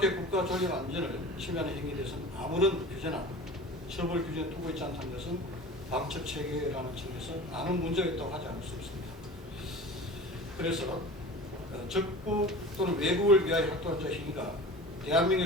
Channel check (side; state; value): both; normal; correlation 0.37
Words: 국가 존립 안전을 침해하는 행위에 대해서는 아무런 규제나 처벌 규정을 두고 있지 않다는 것은 방첩 체계라는 점에서 많은 문제가 있다고 하지 않을 수 없습니다. 그래서 적국 또는 외국을 위하여 활동한 자 행위가